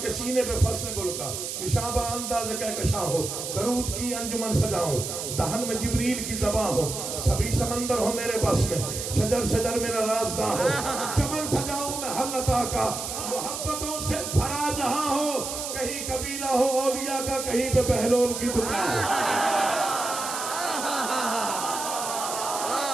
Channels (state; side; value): noise; right; hiss, 5 dB below the sound